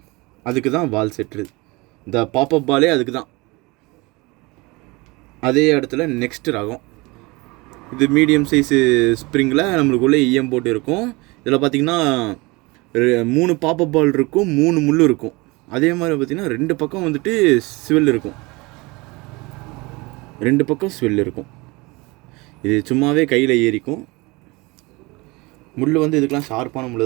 அதுக்கு தான் பால் செட்டு. இந்த பாப்அப் பாலே அதுக்கு தான். அதே இடத்துல நெக்ஸ்ட் ரகம். இது மீடியம் சைஸு ஸ்ப்ரிங்கில் நம்மளுக்குள்ளே ஈயம் போட்டு இருக்கும். இதில் பார்த்திங்கன்னா 3 பாப்அப் பால் இருக்கும், 3 முள் இருக்கும். அதே மாதிரி பார்த்திங்கன்னா 2 பக்கம் வந்துட்டு ஸ்வெல் இருக்கும். 2 பக்கம் ஸ்வெல் இருக்கும். இது சும்மாவே கையில் ஏறிக்கும். முள் வந்து இதுக்கெலாம் ஷார்ப்பான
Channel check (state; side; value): quieter; left; 24.5 dB